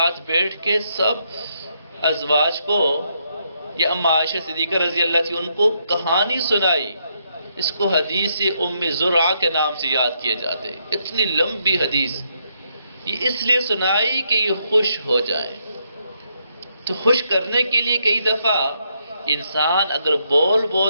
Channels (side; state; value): both; inverted; correlation -0.77